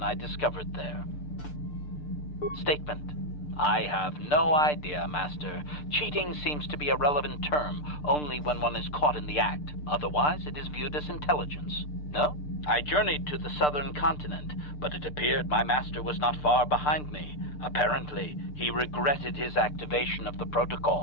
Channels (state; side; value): late; right; 6.7 ms